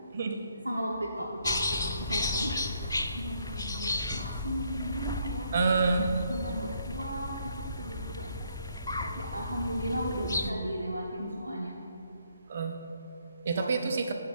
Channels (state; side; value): inverted; both; correlation -0.70